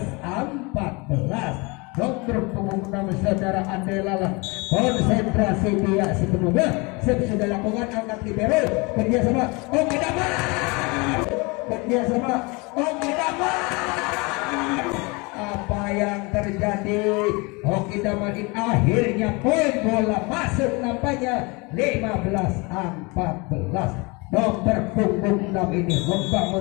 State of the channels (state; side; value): quieter; right; 27.6 dB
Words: Nomor punggung 6 saudara Andelalah konsentrasi dia sepenuhnya sudah lakukan angkat libero kerjasama Oki Damar. Kerjasama Oki Damar. Apa yang terjadi? Oki Damar akhirnya poin bola masuk nampaknya 15-14. Nomor punggung 6 ini